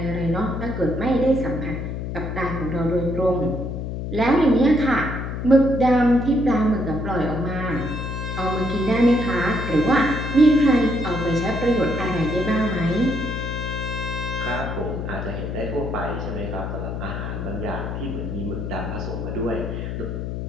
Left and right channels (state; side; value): noise; left; hum, 4 dB below the sound